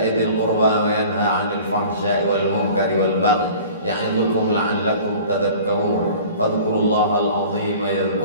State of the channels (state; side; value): inverted; both; correlation -0.44